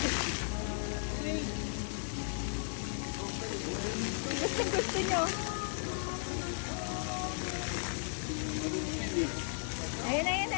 Gusto nyo. Ayun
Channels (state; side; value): silent; right; digital silence